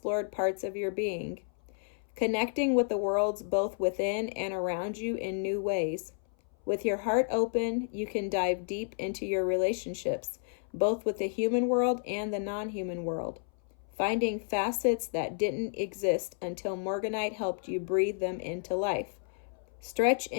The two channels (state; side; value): silent; right; 57 dB below the other